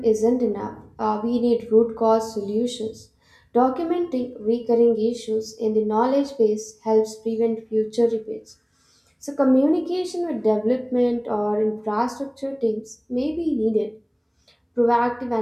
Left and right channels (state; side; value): identical; both; correlation 1.00